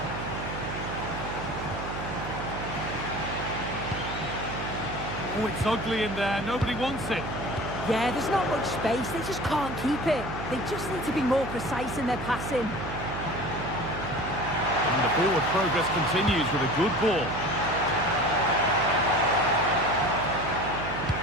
Oh, it's ugly in there. Nobody wants it. Yeah, there's not much space. They just can't keep it. They just need to be more precise in their passing. And the forward progress continues with a good ball.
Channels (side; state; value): right; noise; hum, 7 dB below the sound